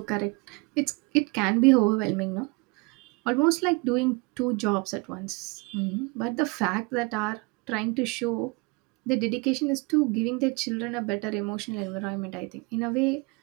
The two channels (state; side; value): quieter; left; 28.2 dB